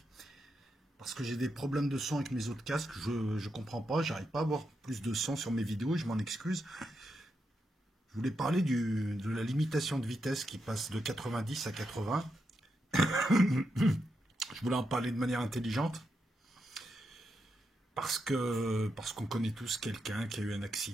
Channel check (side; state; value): both; normal; correlation 0.84